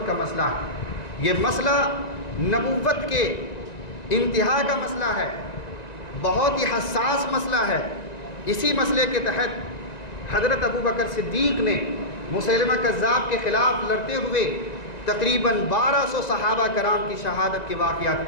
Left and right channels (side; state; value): right; late; 1.9 ms